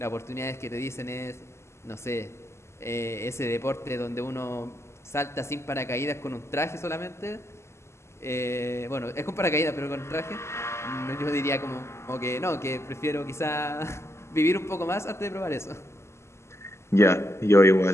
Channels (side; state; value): right; late; 0.13 ms